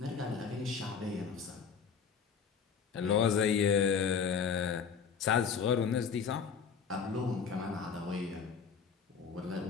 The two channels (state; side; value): quieter; right; 6.4 dB